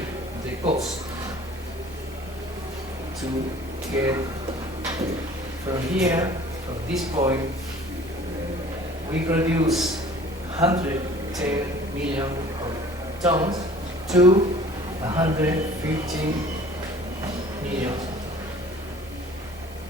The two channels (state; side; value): normal; both; correlation 0.49